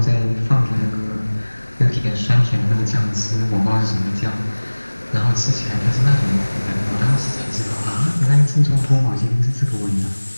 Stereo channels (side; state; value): both; inverted; correlation -1.00